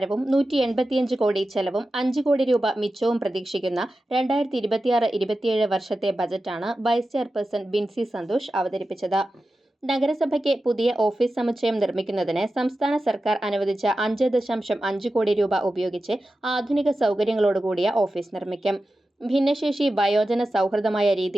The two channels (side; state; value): both; normal; correlation 0.93